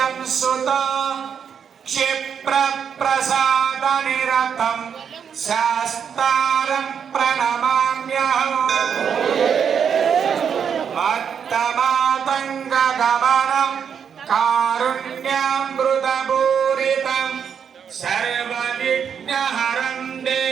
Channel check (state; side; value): quieter; left; 7.5 dB